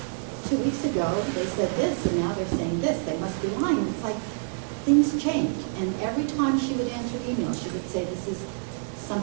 2 weeks ago, they said this, and now they're saying this, they must be lying. It's like, things change. And every time she would answer email, she would say, this is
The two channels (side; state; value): left; silent; 56 dB below the other